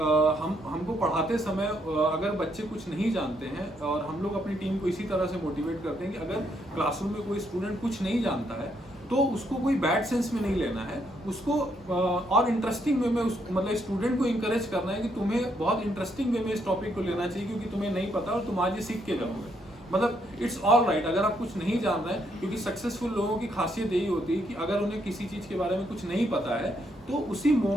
हमको पढ़ाते समय अगर बच्चे कुछ नहीं जानते हैं और हम लोग अपनी टीम को इसी तरह से मोटिवेट करते हैं कि अगर क्लासरूम में कोई स्टूडेंट कुछ नहीं जानता है तो उसको कोई बैड सेंस में नहीं लेना है, उसको और इंटरेस्टिंग वे में मतलब स्टूडेंट को इंकरेज करना है कि तुम्हें बहुत इंटरेस्टिंग वे में इस टॉपिक को लेना चाहिए क्योंकि तुम्हें नहीं पता और तुम आज ये सीख के जाओगे। मतलब इट्स ऑल राइट अगर आप कुछ नहीं जान रहे हैं, क्योंकि सक्सेसफुल लोगों की खासियत यही होती है कि अगर उन्हें किसी चीज़ के बारे में कुछ नहीं पता है तो उसी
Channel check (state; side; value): normal; both; correlation 0.74